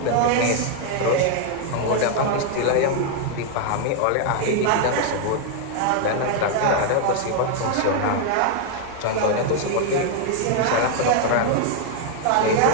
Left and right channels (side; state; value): both; different; correlation 0.00